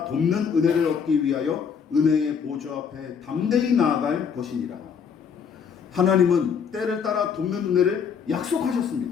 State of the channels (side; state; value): right; quieter; 6.7 dB